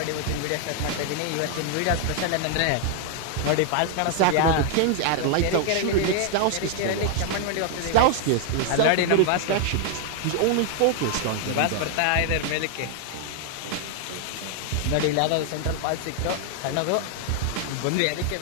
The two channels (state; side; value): different; both; correlation 0.00